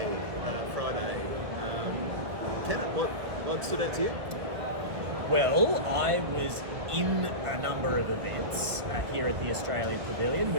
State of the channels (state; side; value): late; left; 1.8 ms